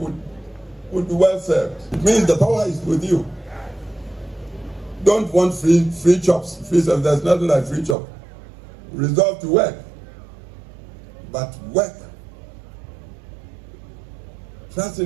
be well served. It means the power is with you. Don't want free chops, free stuff. There's nothing like free chop. Resolve to work, but work.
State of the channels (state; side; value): drops out; left; at 8.0 s